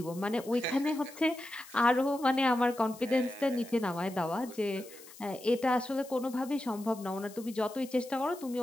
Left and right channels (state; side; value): noise; left; hiss, 19 dB below the sound